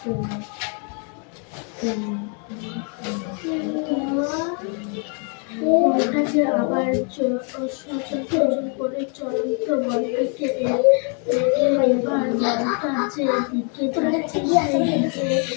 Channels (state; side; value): quieter; right; 39.4 dB